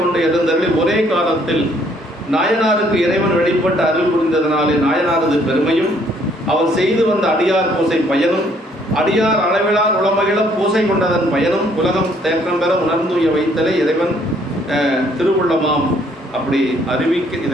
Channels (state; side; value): normal; both; correlation 0.64